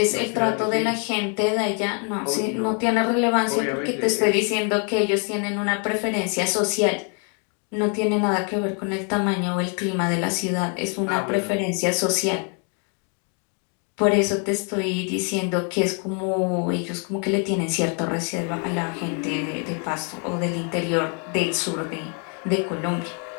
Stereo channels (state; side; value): quieter; right; 39.6 dB